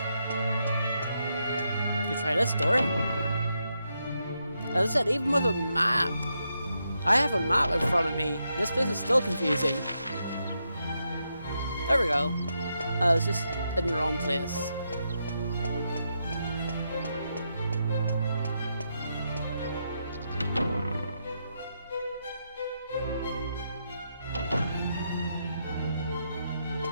You try this door. As I said, even with a map, I have a map in front of me. This place is still confusing. There we go. I was just in the wrong place.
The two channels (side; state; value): both; inverted; correlation -0.82